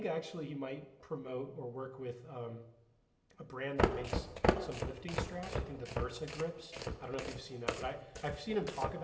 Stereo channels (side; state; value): both; identical; correlation 1.00